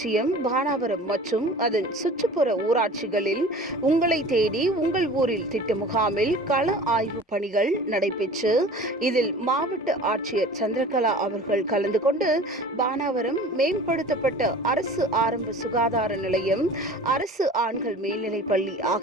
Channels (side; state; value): both; normal; correlation 0.42